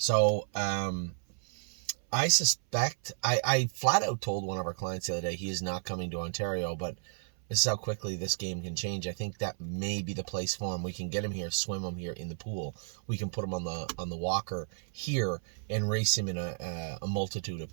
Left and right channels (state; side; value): silent; left; 56 dB below the other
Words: I suspect, I flat out told one of our clients the other day he is not coming to Ontario, but this is how quickly this game can change. I think that may be the place for him. We can get him here, swim him here in the pool. We can put him on the walker here and race him in a multitude of